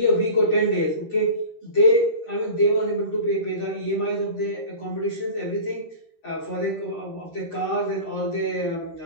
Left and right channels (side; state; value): right; late; 13 ms